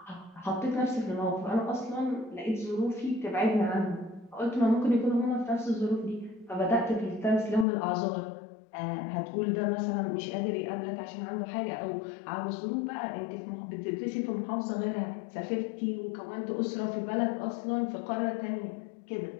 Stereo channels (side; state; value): right; drops out; at 7.7 s